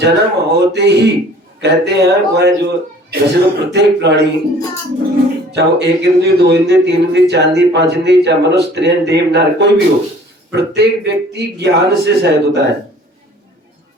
होते ही कहते हैं वह जो जैसे तो प्रत्येक प्राणी, चाहे वो 1 इंद्रिय 2 इंद्रिय 3 इंद्रिय 4 इंद्रिय 5 इंद्रिय, चाहे मनुष्य स्त्री देव नार कोई भी हो, प्रत्येक व्यक्ति ज्ञान से सहित होता है।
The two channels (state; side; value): normal; both; correlation 0.51